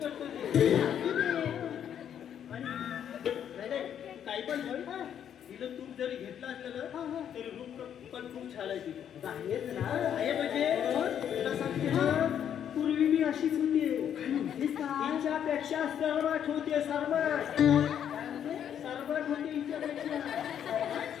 करतो ते. आणि नाही काही पण म्हण तिला तूप जरी घेतलं असलं ना तरी रूप पण खूप छान आहे तिला. आहेच ना आहे म्हणजे तुला सांगते ना पूर्वी मी अशीच होती. हिच्यापेक्षा सर्वात होते सर्वात होते हिच्यापेक्षा.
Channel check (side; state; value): right; quieter; 9.2 dB